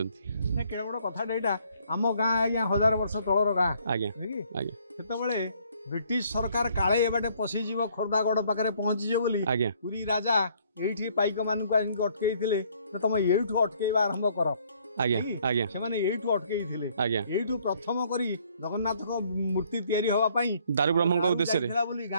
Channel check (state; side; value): inverted; both; correlation -0.63